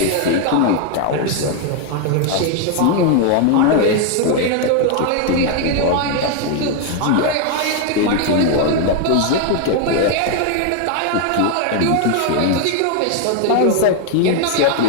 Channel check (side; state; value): both; different; correlation 0.01